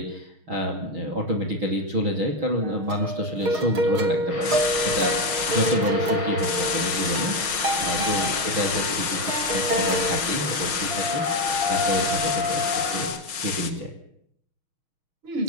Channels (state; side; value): late; left; 6.3 ms